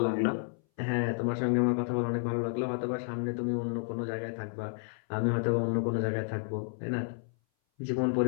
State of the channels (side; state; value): right; silent; 57 dB below the other